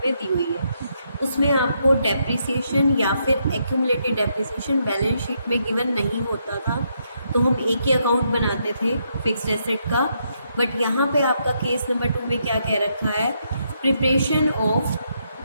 दी हुई है। उसमें आपको डेप्रिसिएशन या फिर एक्यूमुलेटेड डेप्रिसिएशन बैलेंस शीट में गिवन नहीं होता था, तो हम एक ही अकाउंट बनाते थे फिक्स्ड एसेट का। बट यहाँ पे आपका केस नंबर 2 में क्या कह रखा है, preparation of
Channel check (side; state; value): both; inverted; correlation -0.77